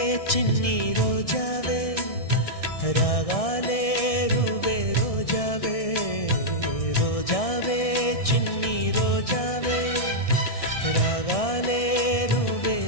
చిన్ని రోజావే రాగాలే రువే రోజావే రోజావే చిన్ని రోజావే రాగాలే రువే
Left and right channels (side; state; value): right; late; 1.6 ms